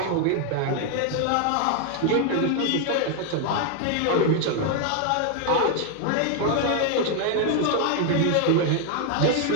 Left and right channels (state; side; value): different; both; correlation 0.00